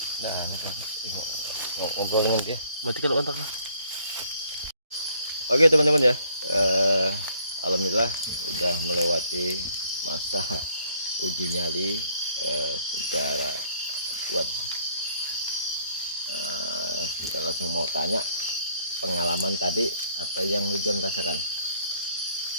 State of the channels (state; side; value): inverted; both; correlation -0.63